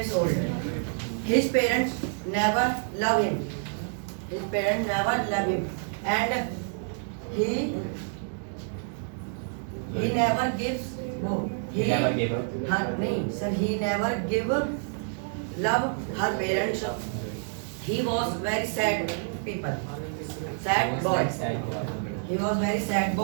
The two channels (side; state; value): left; silent; 59 dB below the other